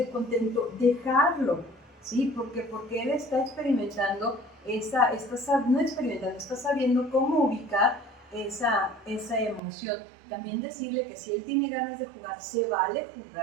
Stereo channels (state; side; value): drops out; left; at 9.6 s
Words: contento, dejarlo, ¿sí? Porque él está experimentando está sabiendo cómo ubicar esa emoción. También decirle que si él tiene ganas de jugar, se vale